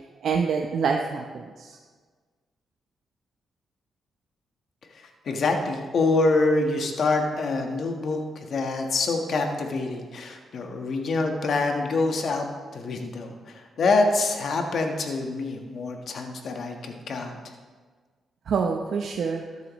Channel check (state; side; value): normal; both; correlation 0.77